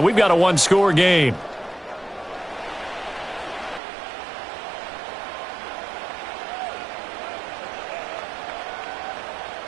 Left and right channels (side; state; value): left; drops out; at 3.8 s